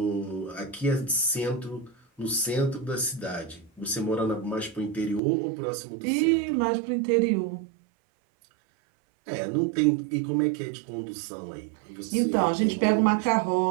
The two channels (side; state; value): left; drops out; at 5.2 s